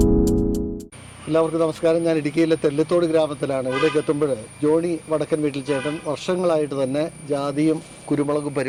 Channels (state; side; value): identical; both; correlation 1.00